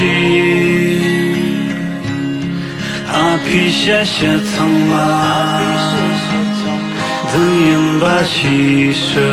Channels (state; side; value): identical; both; correlation 1.00